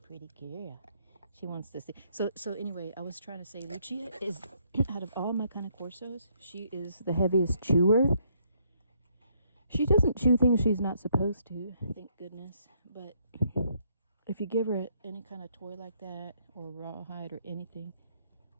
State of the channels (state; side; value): inverted; both; correlation -0.70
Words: pretty girl. She wants to see. So anyway, I was trying to say, Lucia is, out of all my Cane Corsos, she is the heaviest chewer. She doesn't chew things she's not supposed to, thank goodness. But if you give her any kind of toy like that, or rawhide or anything,